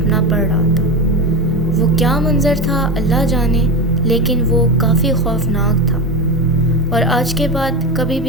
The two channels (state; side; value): normal; both; correlation 0.20